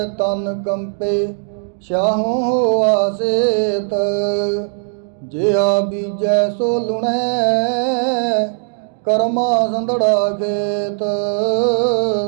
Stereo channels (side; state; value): left; silent; digital silence